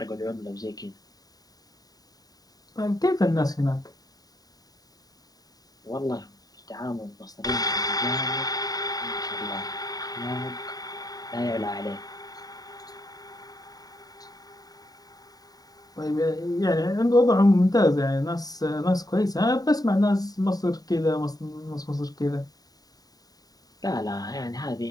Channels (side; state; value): right; late; 0.18 ms